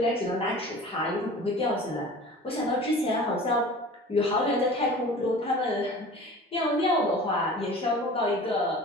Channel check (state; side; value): normal; both; correlation 0.41